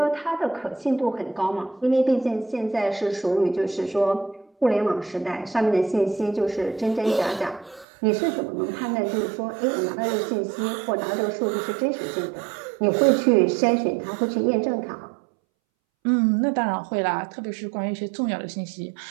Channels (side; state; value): left; drops out; at 7.9 s